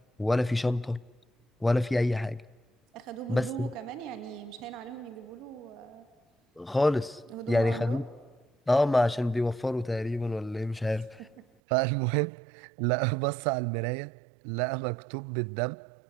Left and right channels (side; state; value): left; drops out; at 11.4 s